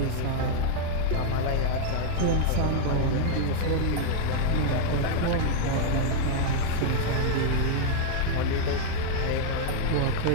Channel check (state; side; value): different; both; correlation 0.00